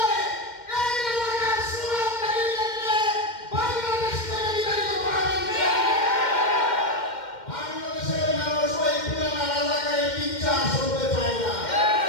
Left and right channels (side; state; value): right; late; 2.1 ms